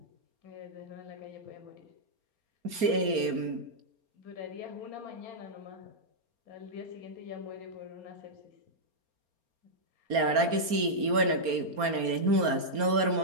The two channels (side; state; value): left; late; 4.3 ms